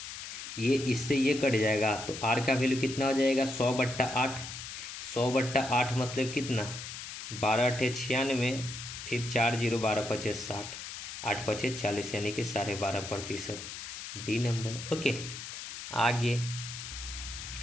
ये इससे ये कट जाएगा। तो R का वैल्यू कितना हो जाएगा, 100/8। 100/8 मतलब कितना, 12 × 96, फिर 4 0 12 5 60, 8 5 40 यानी कि 12.5%, डी नंबर, ओके। आगे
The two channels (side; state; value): left; noise; hiss, 9 dB below the sound